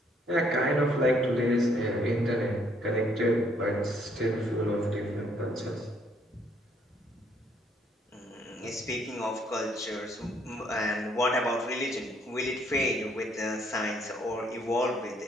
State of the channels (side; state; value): both; normal; correlation 0.67